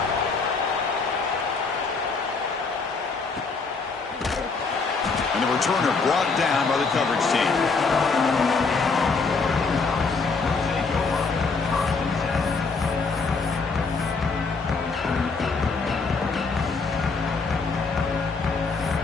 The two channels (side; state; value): right; quieter; 4.4 dB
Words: And the returner brought down by the coverage team.